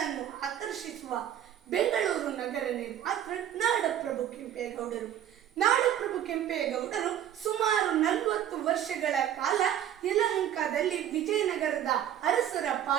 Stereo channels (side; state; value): left; quieter; 10.7 dB